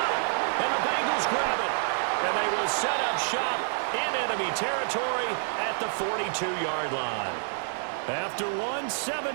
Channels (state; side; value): silent; left; digital silence